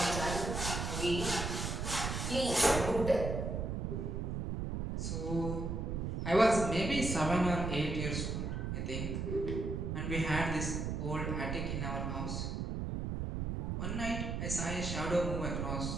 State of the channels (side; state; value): right; noise; rumble, 2 dB below the sound